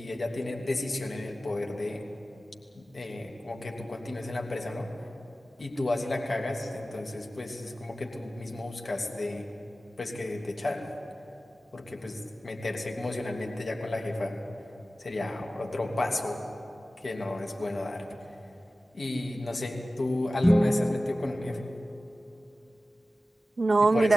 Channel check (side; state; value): both; normal; correlation 0.95